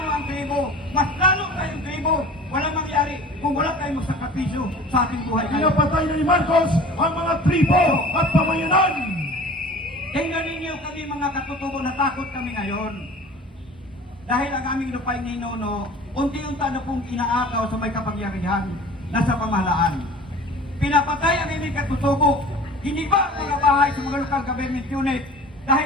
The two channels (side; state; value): both; normal; correlation 0.42